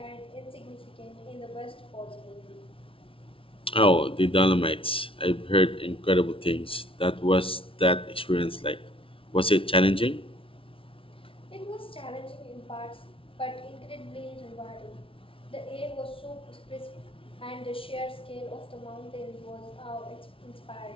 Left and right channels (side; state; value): right; late; 0.26 ms